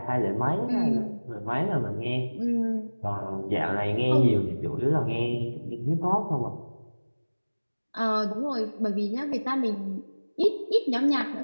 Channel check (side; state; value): both; inverted; correlation -1.00